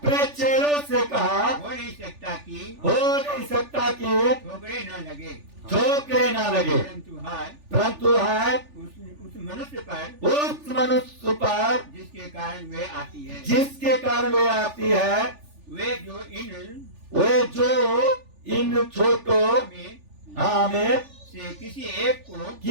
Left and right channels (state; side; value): late; left; 3.4 ms